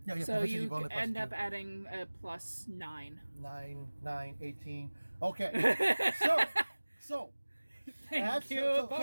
Yeah, So proficiency you bonus plus end 2. up adding a plus 9. 9, 18. Okay. So. Thank you.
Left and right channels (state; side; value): inverted; both; correlation -1.00